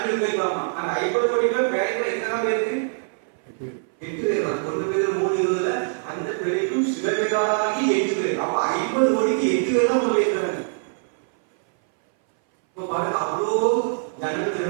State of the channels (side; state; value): left; silent; 61 dB below the other